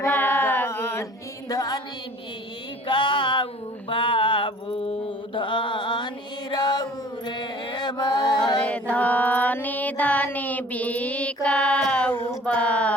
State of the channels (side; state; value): both; normal; correlation 0.49